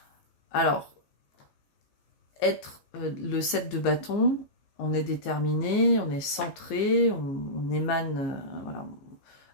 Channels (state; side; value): late; right; 15 ms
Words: Alors, être le 7 de bâton, on est déterminé, on est centré, on émane voilà,